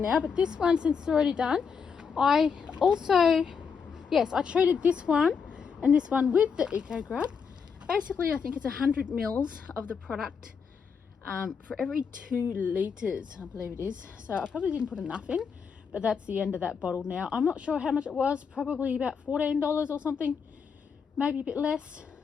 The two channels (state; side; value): quieter; right; 6.1 dB